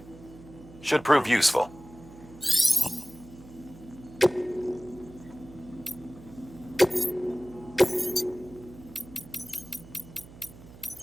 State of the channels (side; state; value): right; noise; hum, 19 dB below the sound